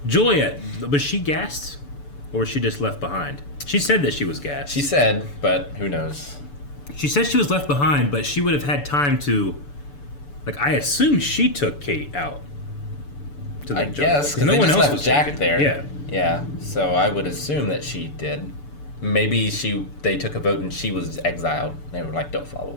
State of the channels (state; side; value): late; right; 6.9 ms